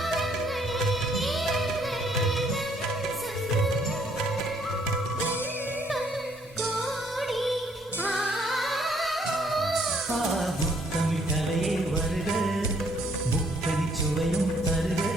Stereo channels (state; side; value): normal; both; correlation 0.66